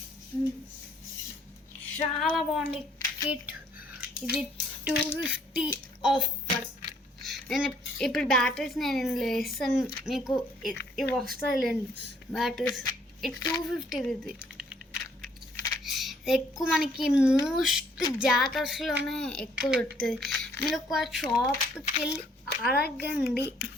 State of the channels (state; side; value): normal; both; correlation 0.64